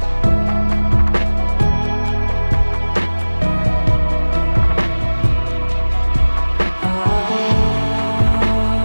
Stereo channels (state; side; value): inverted; both; correlation -1.00